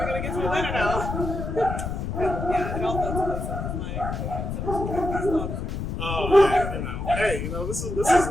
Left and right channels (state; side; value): noise; left; rumble, 4 dB below the sound